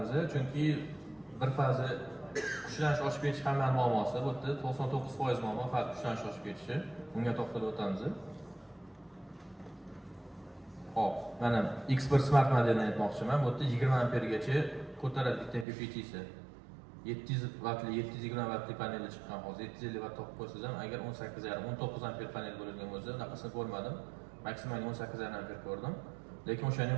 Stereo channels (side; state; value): left; drops out; at 15.7 s